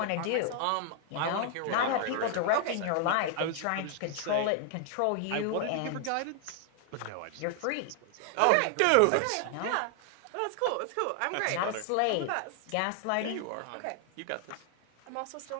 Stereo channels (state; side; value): different; both; correlation 0.00